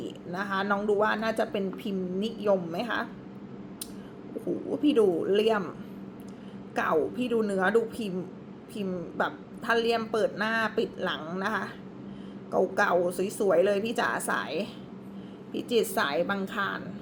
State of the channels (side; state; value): both; identical; correlation 1.00